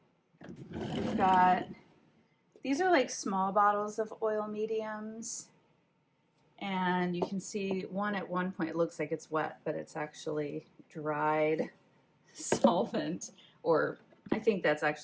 We've got, these are like small bottles of oil mediums. And you can see one at one point, it looks like it's wet, but it's actually dried solvent, or I think that's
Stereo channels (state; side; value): identical; both; correlation 1.00